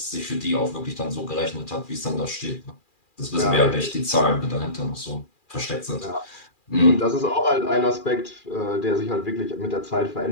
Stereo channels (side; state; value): right; late; 2.4 ms